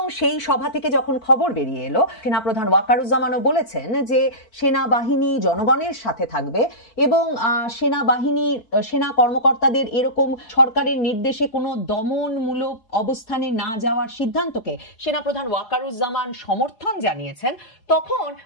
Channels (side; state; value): right; late; 4.6 ms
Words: সেই সভা থেকে যখন খবর বেরিয়ে এলো, সেনাপ্রধান ওয়াকারুজ্জামানও বলেছেন যে সেনাবাহিনী জনগণের সাথে থাকবে এবং সেনা কর্মকর্তাদের এরকম সরকারের নির্দেশে কোনো দমনমূলক অবস্থানে না যাওয়ার সিদ্ধান্তকে সেনাপ্রধান ওয়াকারুজ্জামান সমর্থন জানিয়েছেন। তখন